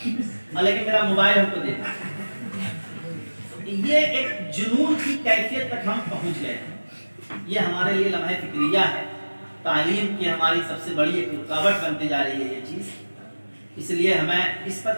لیکن میرا موبائل ہم کو دے دیں۔ یہ ایک جنون کی کیفیت تک ہم پہنچ گئے ہیں۔ یہ ہمارے لیے لمحہ فکریہ ہے، تعلیم کی ہماری سب سے بڑی ایک رکاوٹ بنتے جا رہی ہے یہ چیز، اس لیے ہمیں اس پر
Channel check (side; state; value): both; inverted; correlation -1.00